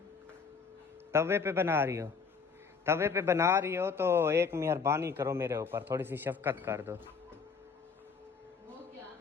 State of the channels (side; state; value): right; quieter; 5.5 dB